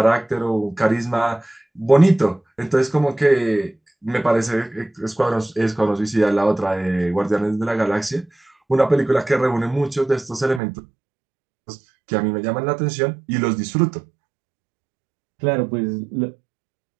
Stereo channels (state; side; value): drops out; left; at 10.6 s